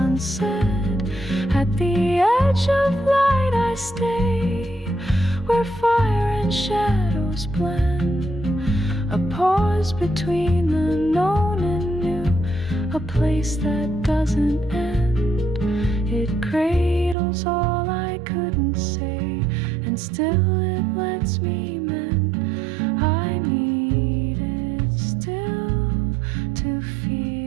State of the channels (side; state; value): left; drops out; at 17.2 s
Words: At the edge of light I stay, where fire and shadows blend. A pause between the known and new, a place that doesn't end. It cradles all I couldn't say, and still it lets me mend. I need it still to